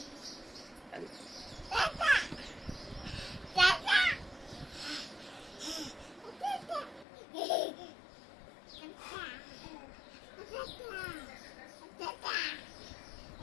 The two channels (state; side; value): drops out; right; at 7.1 s